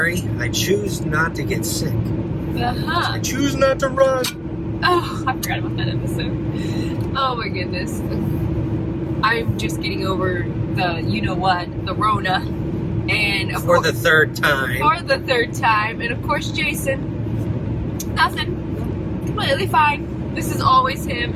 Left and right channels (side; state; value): both; identical; correlation 1.00